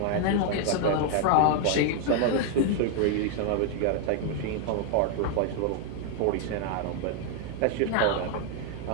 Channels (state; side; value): different; both; correlation 0.00